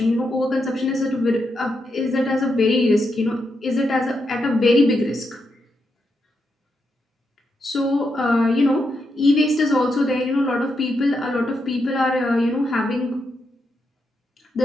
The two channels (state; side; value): normal; both; correlation 0.83